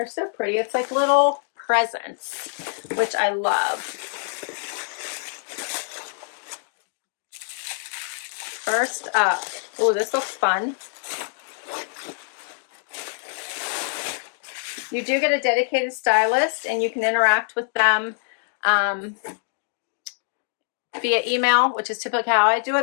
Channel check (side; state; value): right; silent; digital silence